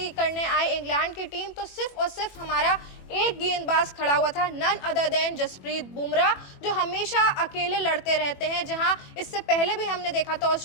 करने आए इंग्लैंड की टीम, तो सिर्फ और सिर्फ हमारा एक गेंदबाज खड़ा हुआ था, none other than Jasprit Bumrah, जो हमेशा अकेले लड़ते रहते हैं। जहां इससे पहले भी हमने देखा था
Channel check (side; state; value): right; late; 21 ms